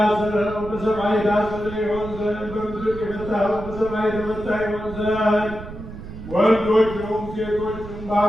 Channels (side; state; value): right; noise; rumble, 12 dB below the sound